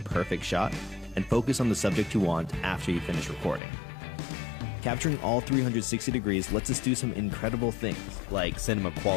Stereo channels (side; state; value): right; drops out; at 3.6 s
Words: perfect shot and focus on the subject you want after you finish recording. Capturing all 360 degrees lets us do some incredible things, like cinema